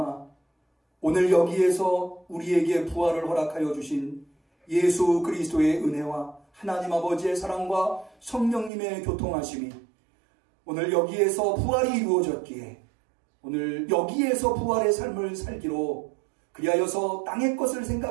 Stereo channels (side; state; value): left; drops out; at 8.7 s